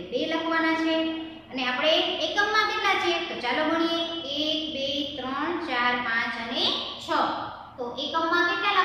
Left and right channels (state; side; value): identical; both; correlation 1.00